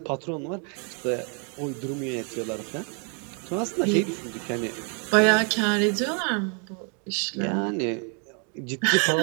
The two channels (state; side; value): quieter; left; 39.5 dB